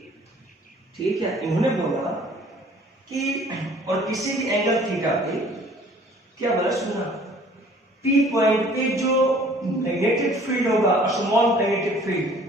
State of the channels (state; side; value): normal; both; correlation 0.53